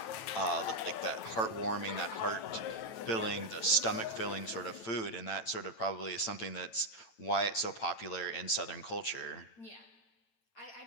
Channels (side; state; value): right; late; 9.0 ms